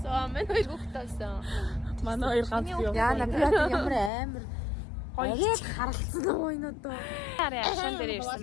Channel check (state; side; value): drops out; right; at 4.1 s